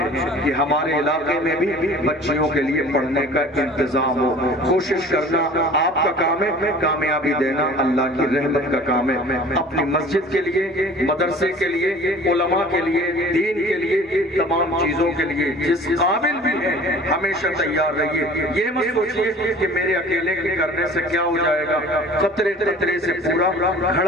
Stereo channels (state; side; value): normal; both; correlation 0.45